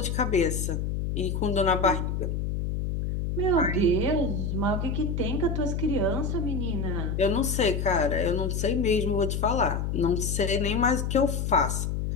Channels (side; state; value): left; noise; hum, 1 dB below the sound